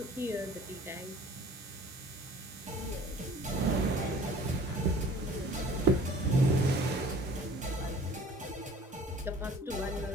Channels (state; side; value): normal; both; correlation 0.49